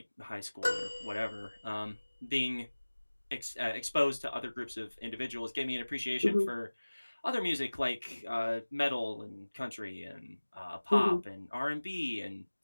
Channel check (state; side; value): inverted; both; correlation -1.00